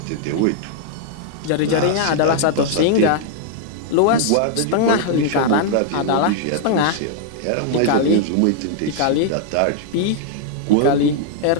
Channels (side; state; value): both; different; correlation 0.00